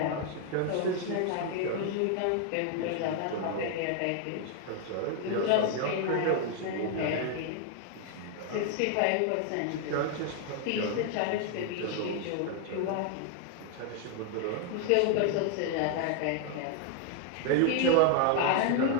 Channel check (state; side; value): different; both; correlation 0.00